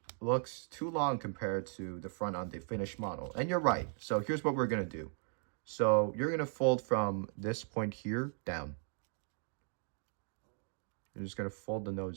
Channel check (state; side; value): silent; left; 53 dB below the other